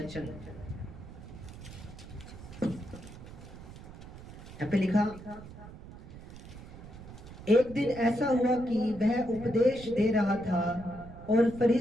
यहाँ पे लिखा, एक दिन ऐसा हुआ कि वह उपदेश दे रहा था और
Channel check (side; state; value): right; noise; rumble, 15 dB below the sound